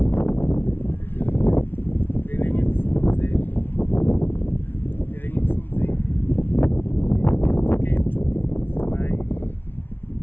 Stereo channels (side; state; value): right; late; 0.10 ms